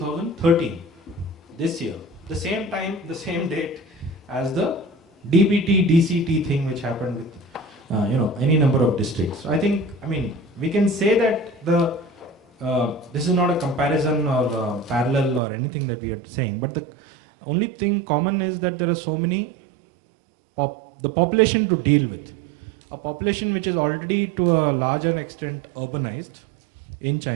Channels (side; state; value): left; drops out; at 15.4 s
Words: this year. The same time, the same date as the DBT, DCT thing which happened with any number of districts. So I mean, we can say that this is not a comparison or parallel or anything that we are saying, but the only thing common is that there are so many, the population to deal with. A population which is already to a larger extent urbanized in